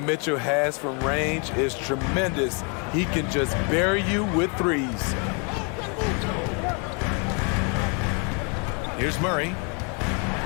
has from range is tremendous. He can just bury you with threes. Here's Murray.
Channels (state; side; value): quieter; right; 35.3 dB